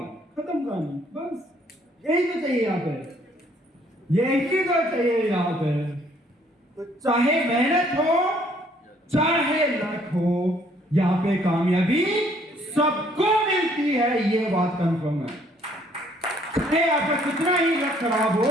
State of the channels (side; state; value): both; normal; correlation 0.63